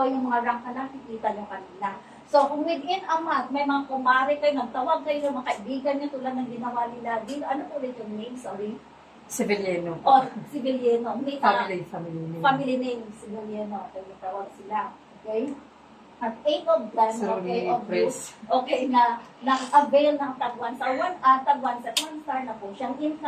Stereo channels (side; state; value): both; identical; correlation 1.00